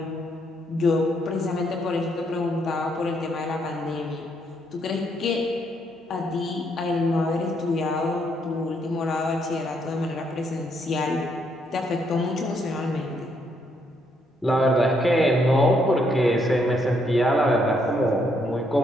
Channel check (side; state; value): both; normal; correlation 0.74